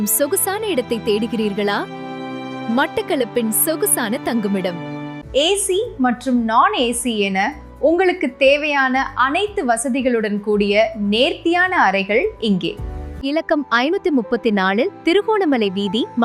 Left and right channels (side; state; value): both; identical; correlation 1.00